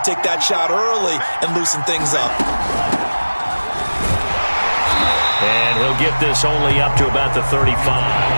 to take that shot early and loosen things up. And he'll get this only up to about the 35.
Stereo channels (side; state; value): both; inverted; correlation -1.00